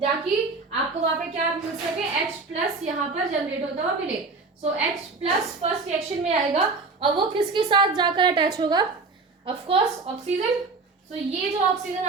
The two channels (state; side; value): quieter; left; 4.0 dB